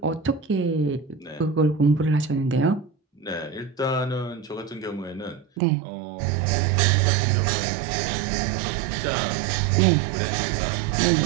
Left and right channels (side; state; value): left; drops out; at 5.6 s